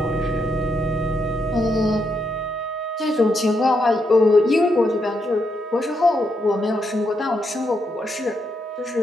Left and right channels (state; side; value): normal; both; correlation 0.80